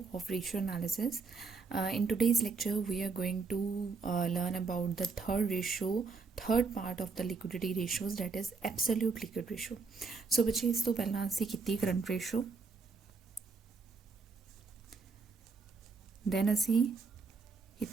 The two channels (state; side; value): quieter; left; 4.6 dB